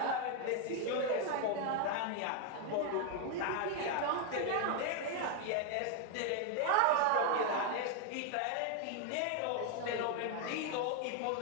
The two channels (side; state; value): both; different; correlation 0.01